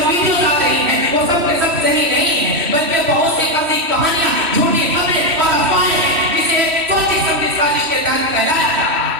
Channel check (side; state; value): left; late; 3.1 ms